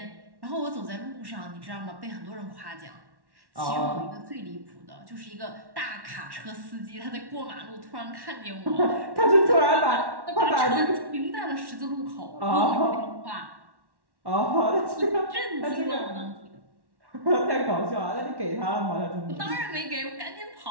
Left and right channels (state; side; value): late; left; 1.1 ms